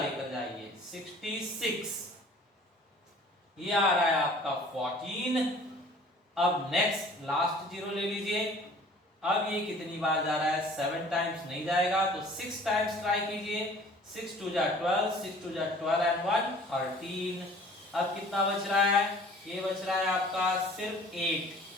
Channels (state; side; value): normal; both; correlation 0.50